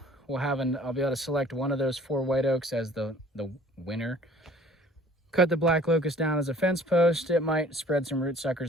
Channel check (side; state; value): both; normal; correlation 0.52